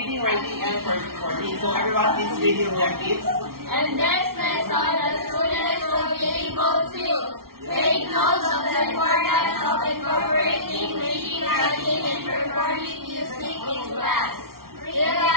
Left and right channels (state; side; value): late; left; 0.93 ms